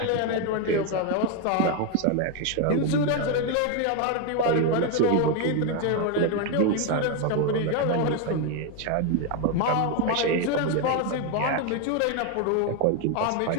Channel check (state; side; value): different; both; correlation 0.01